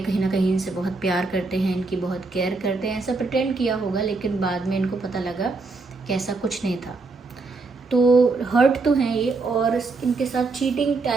ना कहीं इनसे बहुत प्यार करते हैं, इनकी बहुत केयर करते हैं, ऐसा प्रिटेंड किया होगा। लेकिन बाद में इनको पता लगा कि ऐसा कुछ नहीं था। तो हर्ट तो हैं ये, और इनके साथ चीटिंग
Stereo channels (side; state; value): left; quieter; 3.8 dB